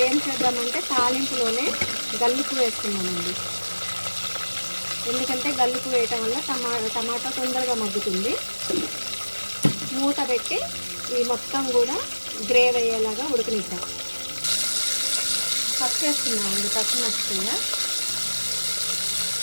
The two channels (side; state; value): both; inverted; correlation -1.00